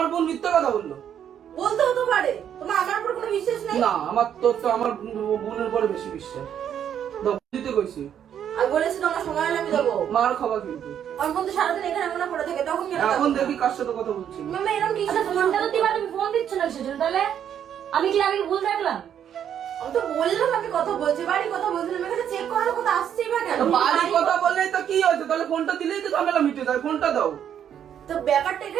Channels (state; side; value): quieter; left; 9.3 dB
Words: বোন মিথ্যা কথা বললো। বলতে হতে পারে। তোমার আমার উপর কোনো বিশ্বাস নেই? না, আমার তোর তো আমার বোনের উপরে বেশি বিশ্বাস। দাও, দিতে কইছি। আমি বলেছি তোমার সময় হলে আমি দেবো। মার খাবা কিন্তু। আমার বোন তো সারাদিন এখানে মনে পড়ে থাকে, তখন কেন? এখন দেখি কার সাথে কথা বলছি। মামা এরকম কি? ফোনটা তো দিবা, তুমি ফোন দিচ্ছ না সেজন্য। তাহলে আমি কি ভুল দেখলাম? আমি তো বললাম আমি কথা বলছি, বাড়ি কথা বলছিলাম, এখানে চেক করার কথা আসছেই বা কেন? তো বাড়ি কথা বললেই তো কি হয়েছে? তাহলে ফোনটা দিলেই তো ঝামেলা মিটে যায়। ফোনটা দাও। তো ব্যাপারটা